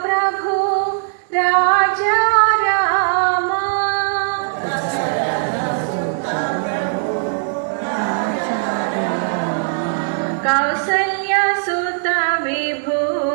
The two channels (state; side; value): silent; left; digital silence